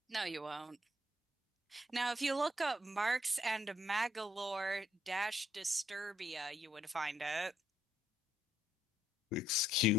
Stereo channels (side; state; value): both; normal; correlation 0.72